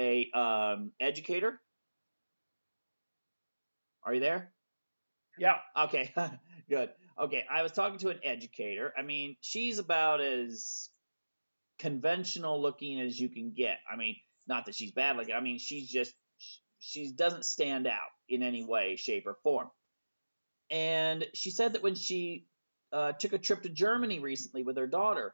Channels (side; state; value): both; inverted; correlation -1.00